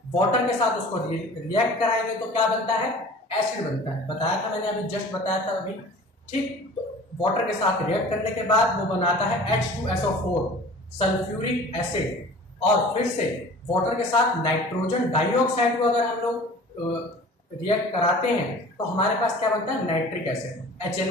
वाटर के साथ उसको रिएक्ट कराएंगे तो क्या बनता है, एसिड बनता है। बताया था मैंने, अभी जस्ट बताया था अभी। ठीक, तो वाटर के साथ रिएक्ट करने के बाद वो बनाता है H2SO4 सल्फ्यूरिक एसिड, और फिर से वाटर के साथ नाइट्रोजन डाइऑक्साइड को अगर हम लोग रिएक्ट कराते हैं तो हमारे पास क्या बनता है, नाइट्रिक एसिड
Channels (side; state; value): both; normal; correlation 0.43